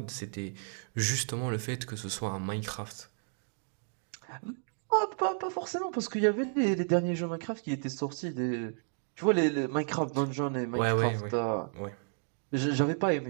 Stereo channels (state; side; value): silent; left; 56 dB below the other